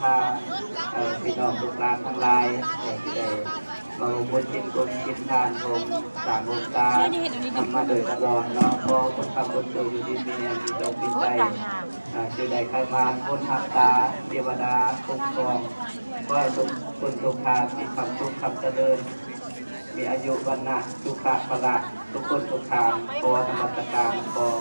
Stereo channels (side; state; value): both; inverted; correlation -1.00